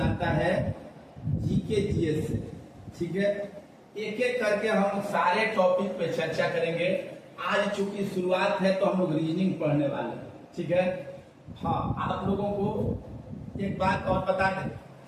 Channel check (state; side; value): identical; both; correlation 1.00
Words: आता है जीके जीएस से। ठीक है, एक एक करके हम सारे टॉपिक पे चर्चा करेंगे। आज चूंकि शुरुआत है तो हम लोग रीजनिंग पढ़ने वाले हैं। ठीक है, हाँ, आप लोगों को एक बात और बता दें